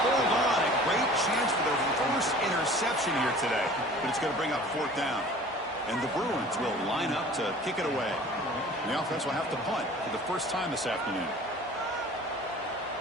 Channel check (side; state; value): both; normal; correlation 0.45